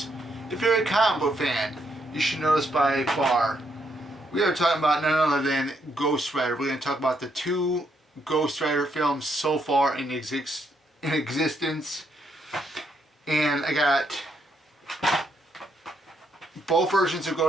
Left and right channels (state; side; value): normal; both; correlation 0.75